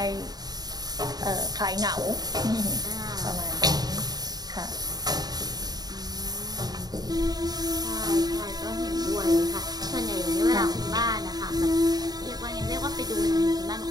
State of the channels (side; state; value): left; late; 0.19 ms